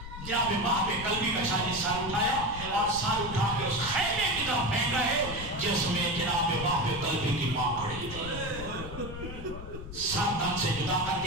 جناب وہاں پہ قلبی کا شاہی سار اٹھایا اور سار اٹھا کے اس خیمے کی طرف پھینکا ہے جس میں جناب وہاں پہ قلبی کی ماں کھڑی تھی. سر تن سے جدا کر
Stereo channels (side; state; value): left; noise; rumble, 11 dB below the sound